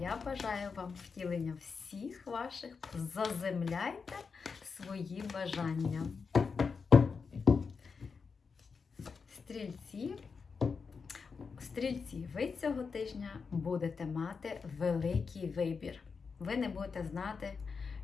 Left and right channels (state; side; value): quieter; right; 5.3 dB